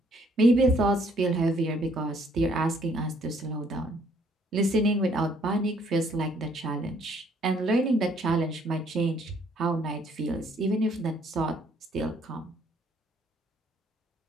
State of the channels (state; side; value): normal; both; correlation 0.65